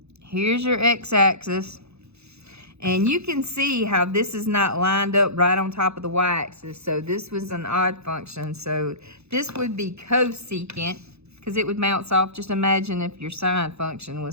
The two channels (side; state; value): left; late; 0.80 ms